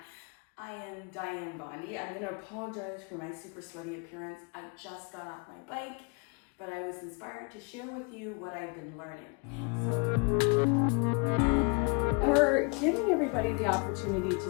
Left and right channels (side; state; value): right; quieter; 32.7 dB